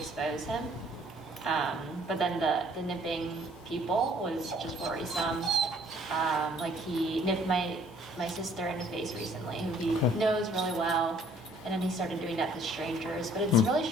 him. But then the nipping people was just worrisome. Like he nipped my sister in the face recently, who he knows really well, and then he started doing that to strangers. But it's really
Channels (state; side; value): normal; both; correlation 0.59